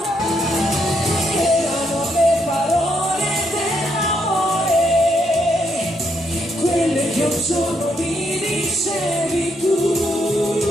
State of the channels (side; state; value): both; normal; correlation 0.76